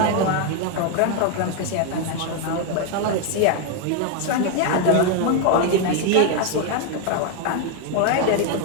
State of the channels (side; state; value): both; different; correlation 0.01